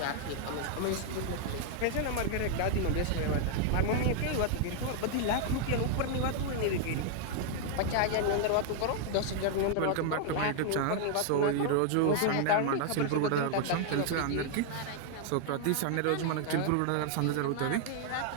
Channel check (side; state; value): both; different; correlation 0.00